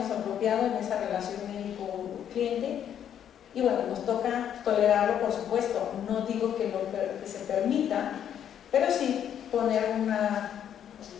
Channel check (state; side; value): quieter; right; 9.5 dB